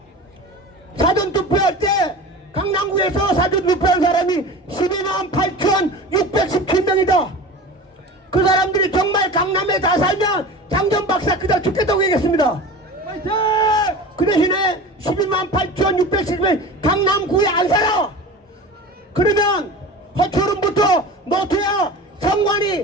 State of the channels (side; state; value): both; normal; correlation 0.34